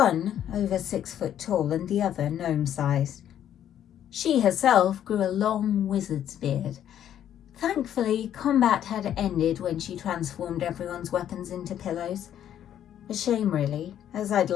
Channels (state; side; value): quieter; right; 10.5 dB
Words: over 6 foot tall and the other gnome-sized. She herself grew a long wizard's beard. Thankfully, combat had ended when she transformed everyone's weapons into pillows. A shame, really, as I'd